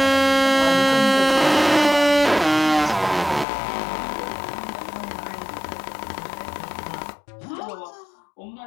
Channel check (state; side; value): drops out; right; at 3.5 s